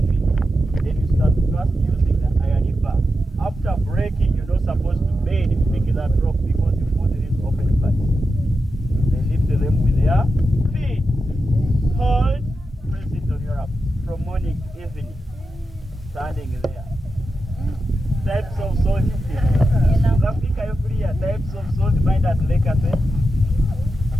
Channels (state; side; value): normal; both; correlation 0.89